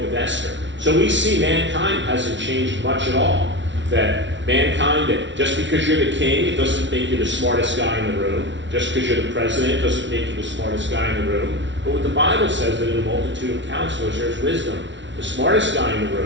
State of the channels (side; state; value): left; late; 0.54 ms